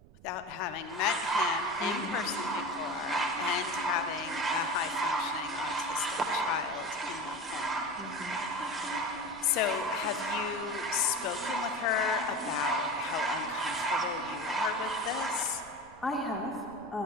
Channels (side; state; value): right; noise; rumble, 22 dB below the sound